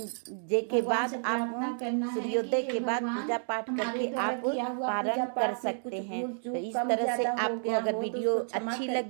के बाद आप सूर्योदय के बाद पूजा पाठ करके आप पारण कर सकते हैं। तो इस तरह से आपको अगर वीडियो अच्छी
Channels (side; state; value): left; silent; digital silence